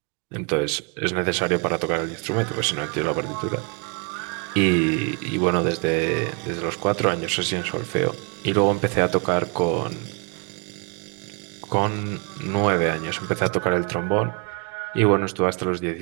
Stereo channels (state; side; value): quieter; left; 34.3 dB